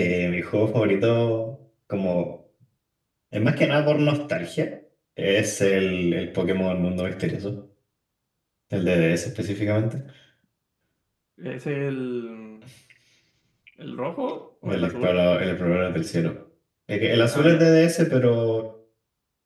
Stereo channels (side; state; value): both; identical; correlation 1.00